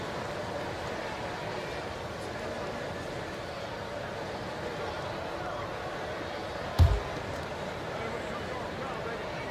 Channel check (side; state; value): both; identical; correlation 1.00